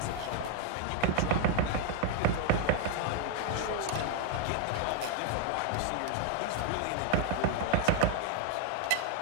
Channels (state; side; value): different; both; correlation 0.00